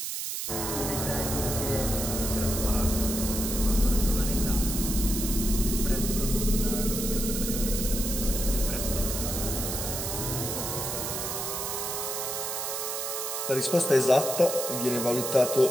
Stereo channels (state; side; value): noise; right; hiss, 3 dB below the sound